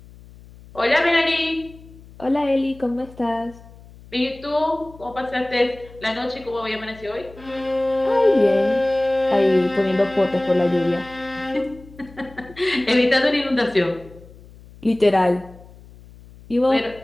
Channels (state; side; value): noise; left; hum, 21 dB below the sound